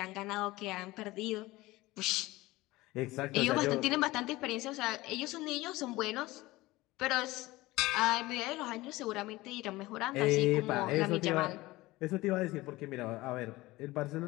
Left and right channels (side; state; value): right; quieter; 19.4 dB